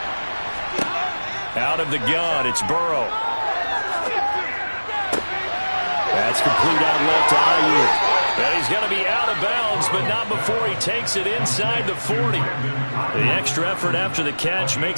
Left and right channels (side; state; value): both; inverted; correlation -1.00